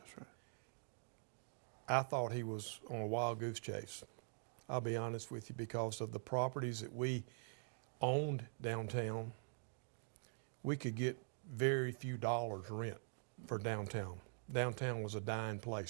I thought he was on a wild goose chase. I'll be honest with you, because of the properties that we owned downtown, we could get very few dollars rent for downtown. Downtown was a dying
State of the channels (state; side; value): silent; left; digital silence